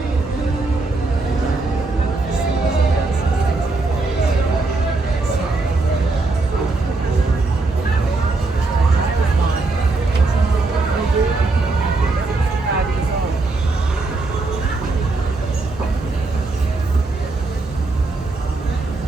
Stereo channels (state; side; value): quieter; left; 3.5 dB